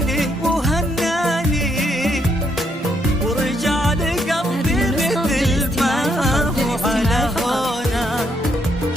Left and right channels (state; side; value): normal; both; correlation 0.74